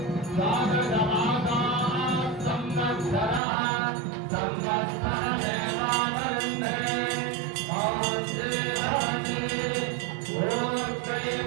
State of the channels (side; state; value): left; drops out; at 3.4 s